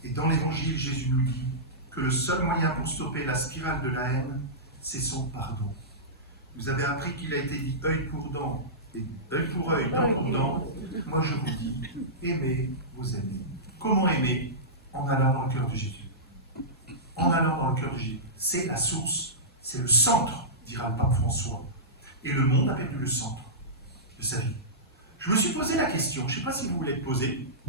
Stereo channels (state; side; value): normal; both; correlation -0.17